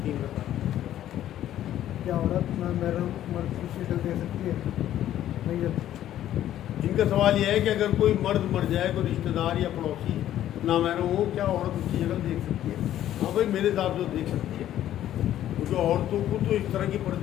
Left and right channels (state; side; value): quieter; right; 12.1 dB